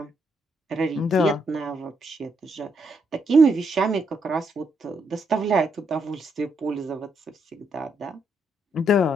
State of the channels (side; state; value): both; normal; correlation 0.76